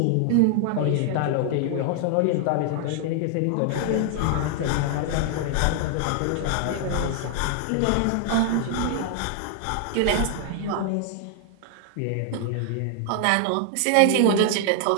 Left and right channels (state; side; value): different; both; correlation 0.00